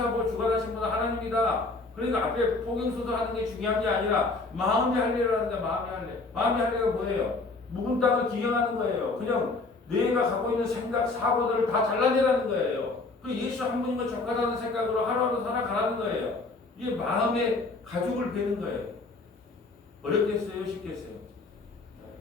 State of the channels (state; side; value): quieter; right; 3.6 dB